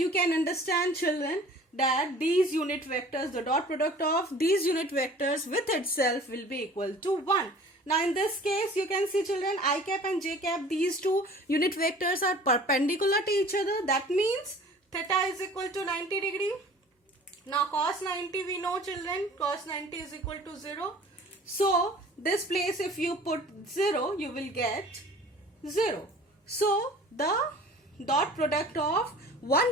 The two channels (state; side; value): normal; both; correlation 0.47